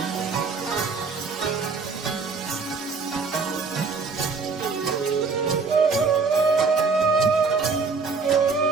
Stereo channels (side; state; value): left; quieter; 4.7 dB